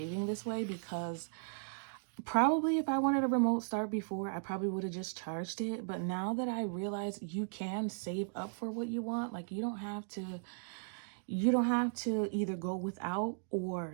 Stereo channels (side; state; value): left; silent; digital silence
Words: this way, because probably if I wanted a remote start before, I probably would have just charged it. But now that I realize you can save up for what you want, like you don't have to either go without